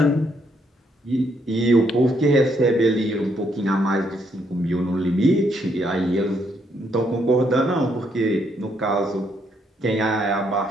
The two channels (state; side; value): normal; both; correlation 0.73